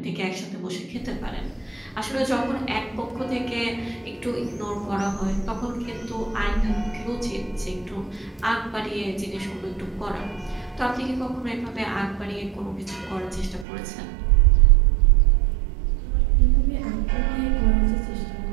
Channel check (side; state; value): left; drops out; at 13.7 s